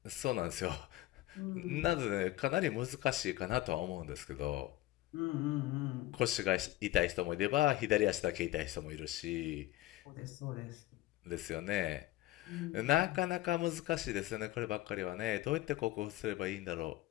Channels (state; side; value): quieter; right; 16.2 dB